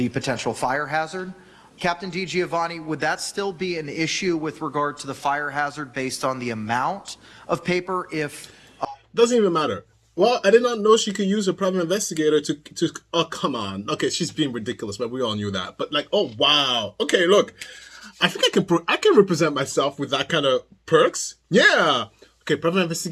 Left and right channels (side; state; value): both; identical; correlation 1.00